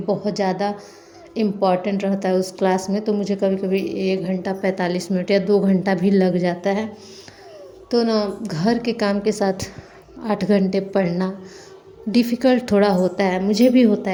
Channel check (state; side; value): identical; both; correlation 1.00